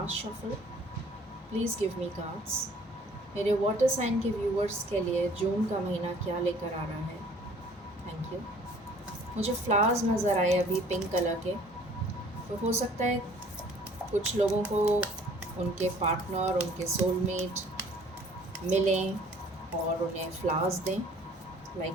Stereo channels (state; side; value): normal; both; correlation 0.54